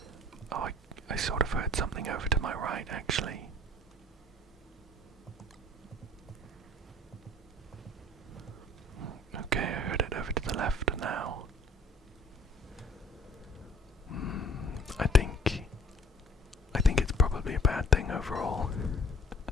Oh, I sort of heard something over to my right, actually. Okay, I heard it over to the left now. I think it's probably a bad thing overall.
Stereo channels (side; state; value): both; normal; correlation 0.53